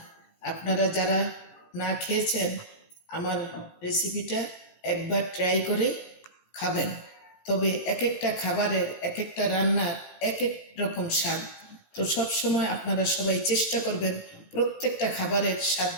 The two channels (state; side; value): late; right; 18 ms